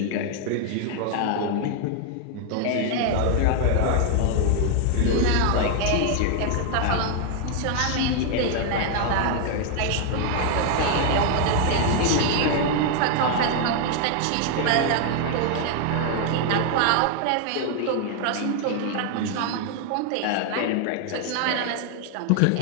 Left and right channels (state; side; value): different; both; correlation 0.00